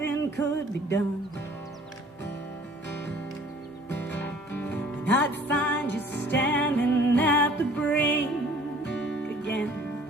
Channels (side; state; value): both; normal; correlation 0.53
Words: could be done. And I'd find you standing at the brink again,